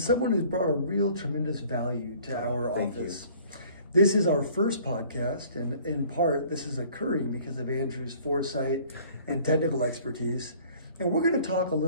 who's brought a real tremendous value to our office. This is our first podcast, and in part, this is occurring because of Andrew's foresight and technical expertise. And we're going to talk a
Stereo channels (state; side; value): inverted; both; correlation -0.53